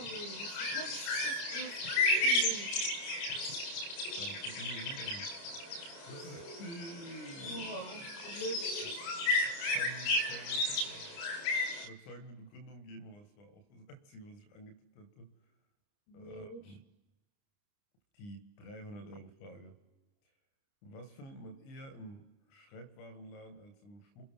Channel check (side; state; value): right; late; 29 ms